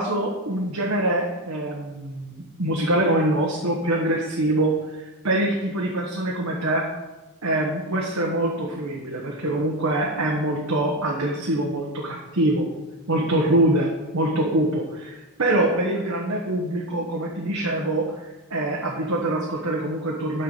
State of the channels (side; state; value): both; normal; correlation 0.15